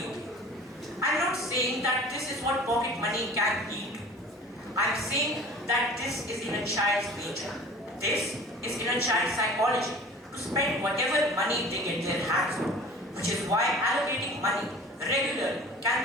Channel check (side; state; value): both; normal; correlation 0.43